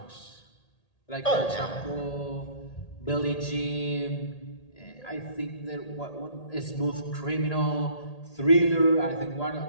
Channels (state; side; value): late; right; 1.8 ms